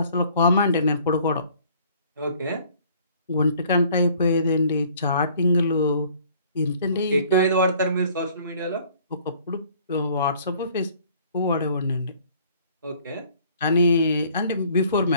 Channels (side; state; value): both; inverted; correlation -0.56